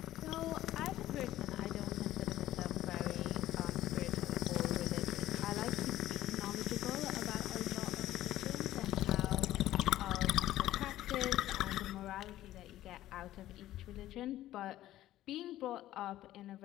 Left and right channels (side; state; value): right; quieter; 14.2 dB